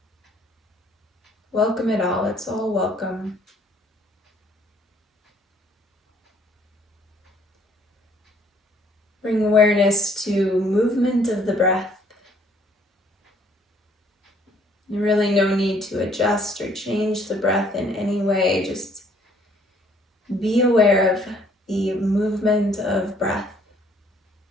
Welcome it all, it's all welcome. Bring awareness to movement of the breath. Really no need to adjust or change the breath in any way. Just be aware of the movement of breath.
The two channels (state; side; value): normal; both; correlation 0.62